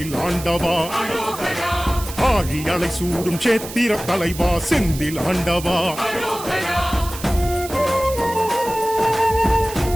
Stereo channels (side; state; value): right; noise; hiss, 12 dB below the sound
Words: ஆண்டவா அரோகரா ஆழி அலை சூடும் சேத்திர தலைவா செந்தில் ஆண்டவா அரோகரா